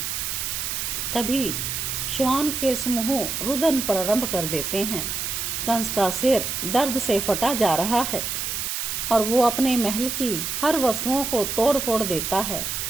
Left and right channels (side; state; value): right; noise; hiss, 3 dB below the sound